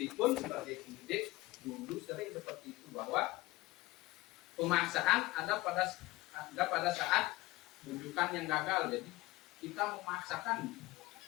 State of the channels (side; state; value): right; quieter; 20.1 dB